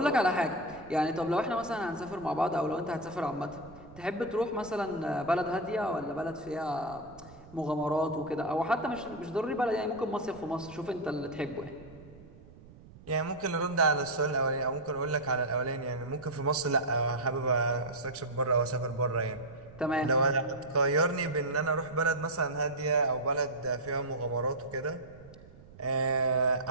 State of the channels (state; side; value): noise; right; rumble, 21 dB below the sound